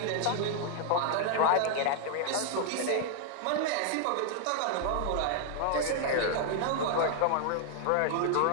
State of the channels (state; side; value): different; both; correlation 0.00